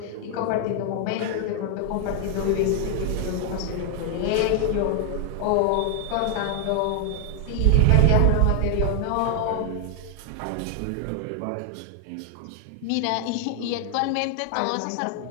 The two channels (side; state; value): both; different; correlation 0.00